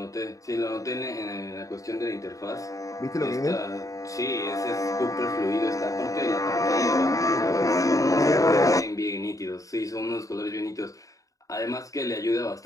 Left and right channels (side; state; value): right; late; 0.16 ms